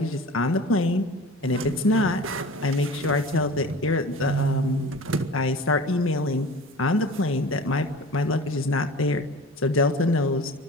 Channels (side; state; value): both; normal; correlation 0.38